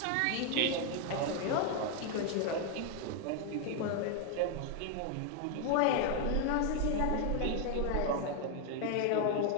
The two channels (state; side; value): different; both; correlation 0.01